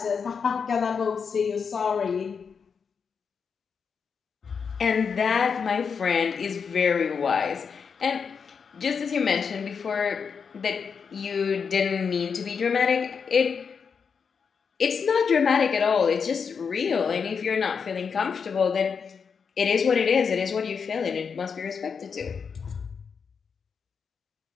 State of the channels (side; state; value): right; quieter; 6.0 dB